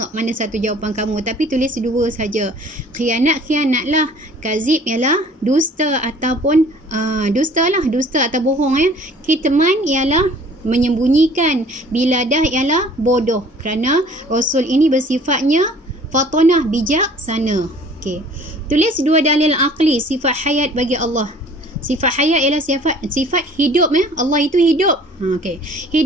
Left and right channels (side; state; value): both; normal; correlation 0.51